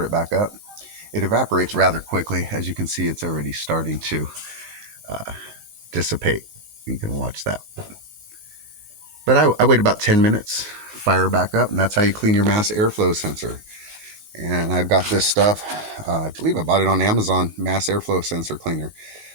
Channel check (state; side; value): late; left; 19 ms